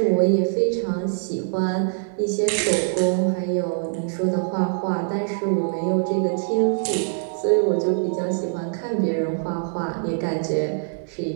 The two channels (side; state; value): left; silent; digital silence